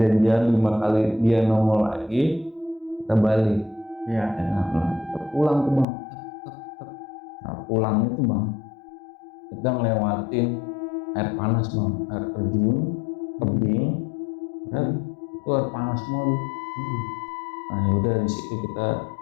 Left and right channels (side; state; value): right; drops out; at 5.9 s